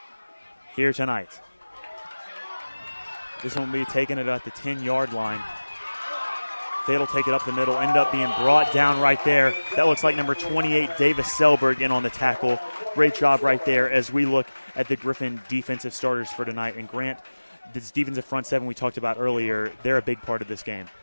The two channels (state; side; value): inverted; both; correlation -1.00